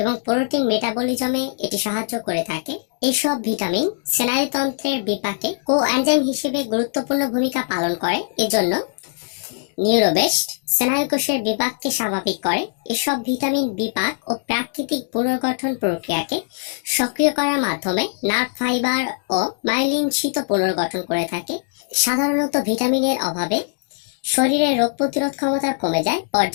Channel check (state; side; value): silent; right; digital silence